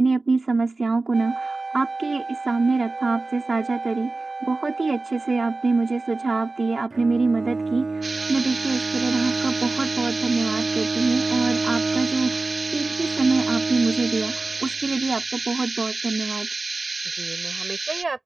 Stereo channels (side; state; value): left; quieter; 3.4 dB